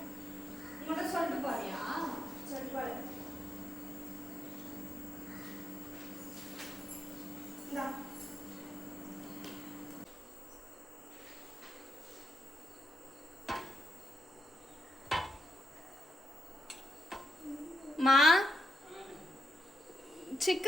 உங்கள்கிட்ட சொல்லிட்டு போறியா? சொல்லிட்டு போடு. இந்தா மா,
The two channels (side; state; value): both; normal; correlation 0.83